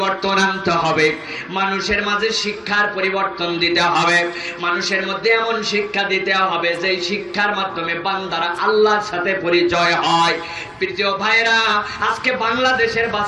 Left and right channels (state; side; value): identical; both; correlation 1.00